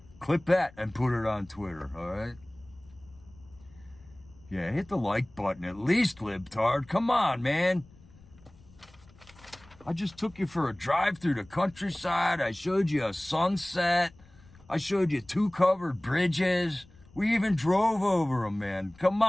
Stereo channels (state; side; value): noise; left; rumble, 25 dB below the sound